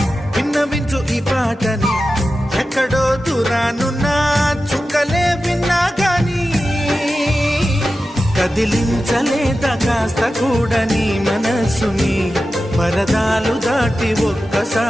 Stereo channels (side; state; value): both; normal; correlation 0.93